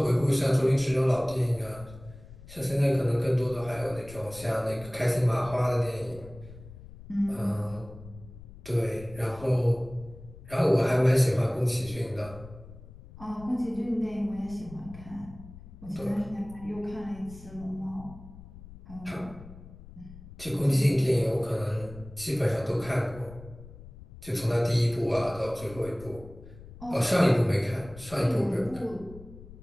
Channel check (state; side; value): noise; left; rumble, 17 dB below the sound